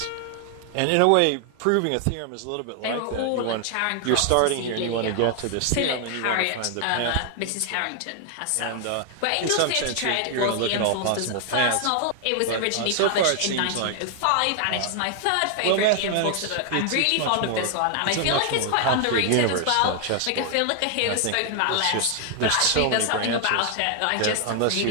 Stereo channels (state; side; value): different; both; correlation 0.00